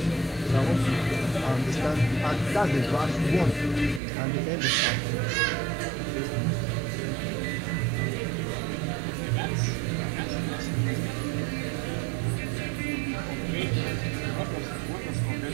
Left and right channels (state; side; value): drops out; left; at 4.0 s